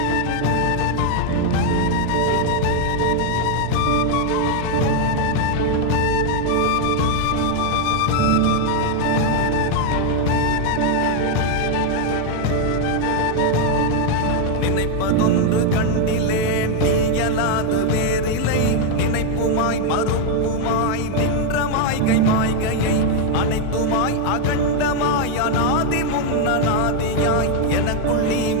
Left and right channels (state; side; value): different; both; correlation 0.01